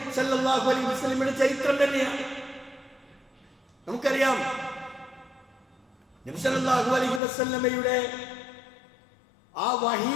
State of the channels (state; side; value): drops out; right; at 7.2 s